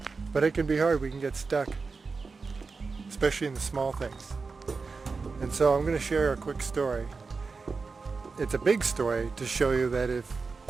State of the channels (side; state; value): left; quieter; 4.5 dB